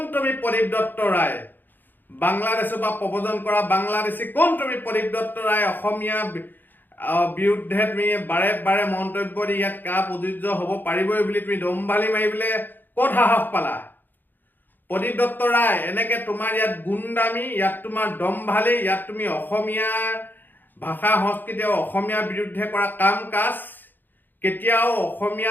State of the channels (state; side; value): late; right; 0.090 ms